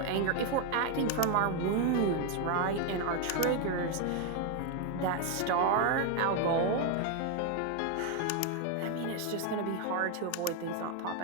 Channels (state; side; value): different; both; correlation 0.01